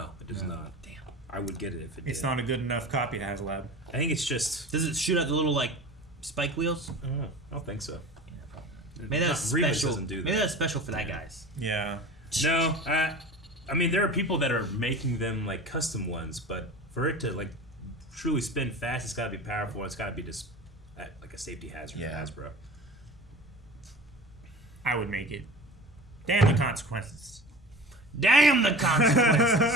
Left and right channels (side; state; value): both; normal; correlation 0.36